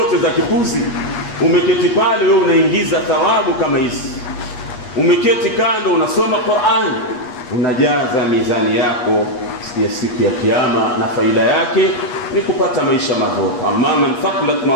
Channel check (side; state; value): right; late; 8.4 ms